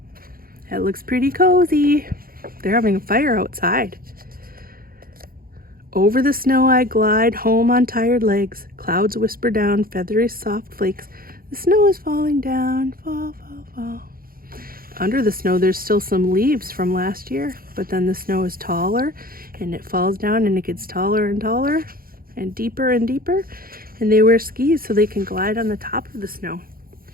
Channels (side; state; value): left; late; 0.42 ms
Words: That looks pretty cozy. They're having a fire outside. Over the snow I glide, home on tired legs. Clouds whisper down, feathery soft flakes. The snow is falling down, fall, fall, fall. Under the snow, there's still some leaves from last year, but then the snow is taller and it falls down and it gets taller and taller and deeper, and they wear skis so they can glide on the top of the snow.